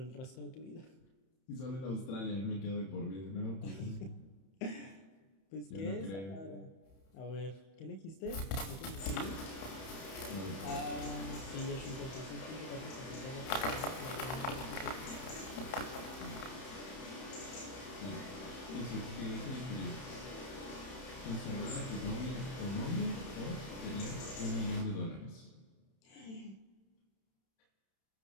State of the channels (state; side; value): late; right; 31 ms